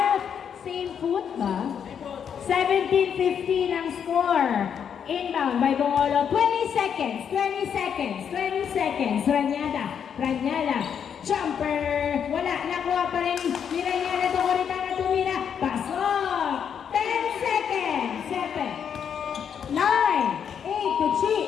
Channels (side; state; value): right; quieter; 7.8 dB